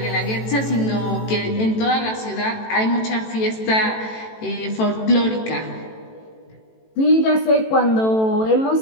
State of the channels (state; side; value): late; right; 18 ms